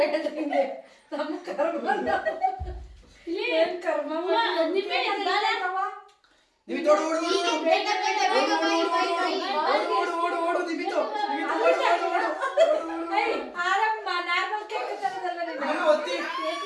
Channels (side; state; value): both; identical; correlation 1.00